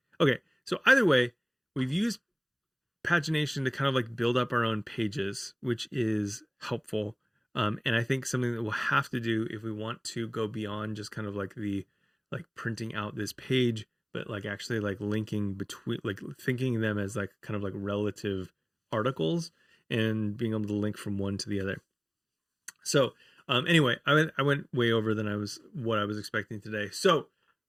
Okay, so either way, we've used pagination to kind of like build up our own pages, which is helpful. And I think something that we'll have to do if we want to go beyond just kind of like the like printing out this page, but like actually like linking between, like thinking them as like kind of like relative articles and being able to link from one to the other. So anyway, I went way over than what I was expecting today. So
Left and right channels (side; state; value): both; identical; correlation 1.00